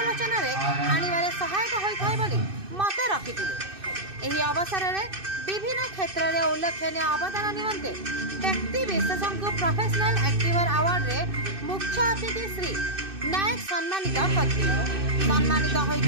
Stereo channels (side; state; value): left; late; 2.6 ms